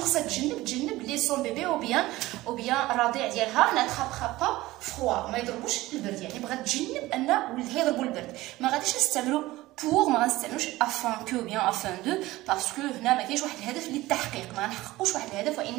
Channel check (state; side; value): quieter; left; 18.1 dB